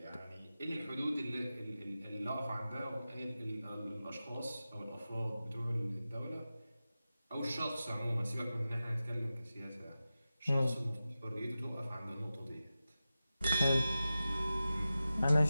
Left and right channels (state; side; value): inverted; both; correlation -0.94